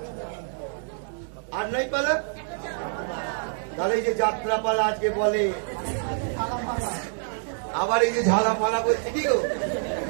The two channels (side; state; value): left; silent; 61 dB below the other